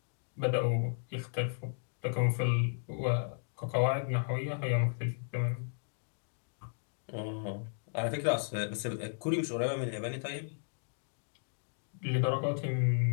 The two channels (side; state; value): right; silent; digital silence